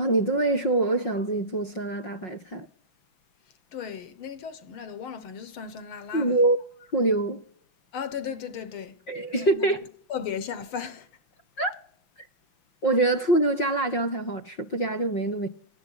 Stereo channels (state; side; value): late; right; 5.5 ms